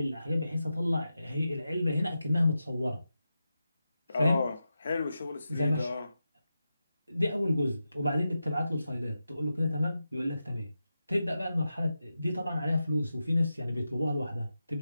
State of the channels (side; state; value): both; inverted; correlation -0.90